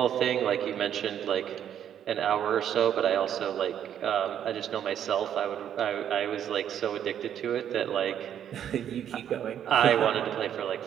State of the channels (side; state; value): left; quieter; 9.7 dB